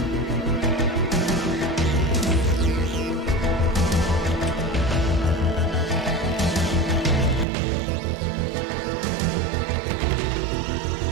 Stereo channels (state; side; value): drops out; left; at 7.5 s